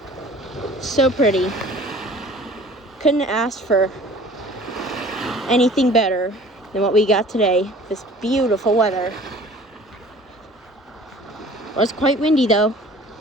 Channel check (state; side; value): normal; both; correlation 0.47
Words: So pretty. Couldn't ask for anything better than what we got today. This beautiful weather. It was quite windy though.